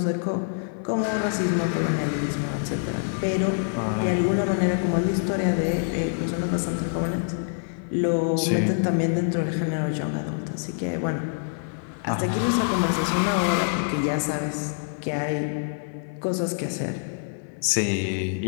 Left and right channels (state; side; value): silent; right; 56 dB below the other